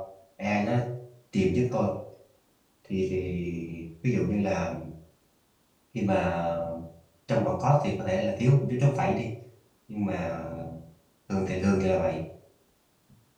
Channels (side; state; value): both; identical; correlation 1.00